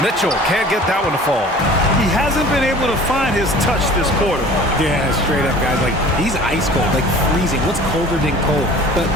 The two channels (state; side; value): normal; both; correlation 0.45